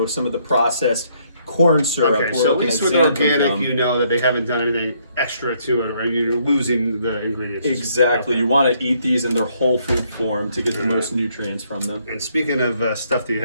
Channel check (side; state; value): both; inverted; correlation -0.69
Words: some of the processed corn syrup. Okay, We're so at looking least at with xanthan organic, gum. you know that they haven't done anything extra to it, or you're losing the ingredients. Exactly. You want to eat these in their whole food form to get the most nutrients from them. And speaking of stuff that you